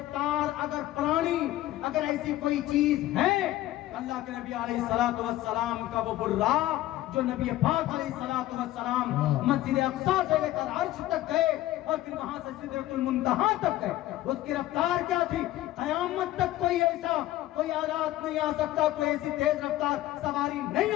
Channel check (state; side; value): quieter; right; 15.2 dB